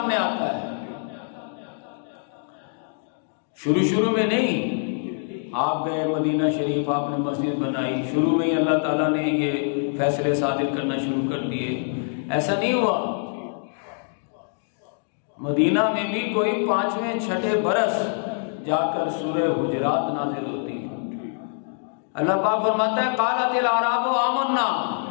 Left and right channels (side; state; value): right; silent; digital silence